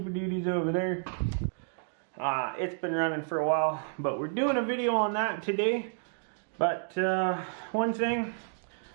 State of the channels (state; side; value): silent; left; digital silence